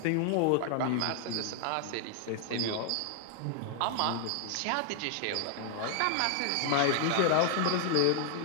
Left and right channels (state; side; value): different; both; correlation 0.00